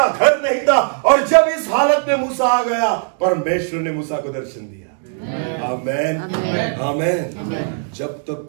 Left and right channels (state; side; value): silent; left; digital silence